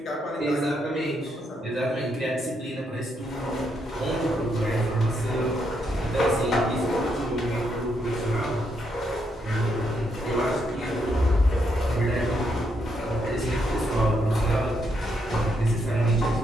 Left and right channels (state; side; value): normal; both; correlation 0.78